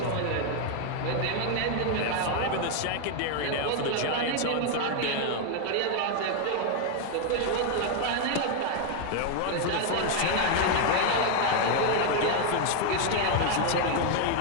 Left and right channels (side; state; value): both; different; correlation 0.01